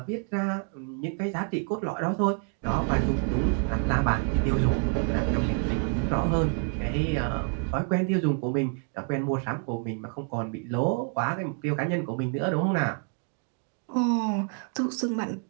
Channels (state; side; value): quieter; left; 39.3 dB